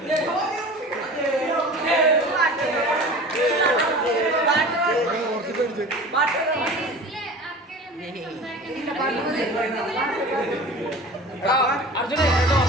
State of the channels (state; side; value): normal; both; correlation 0.38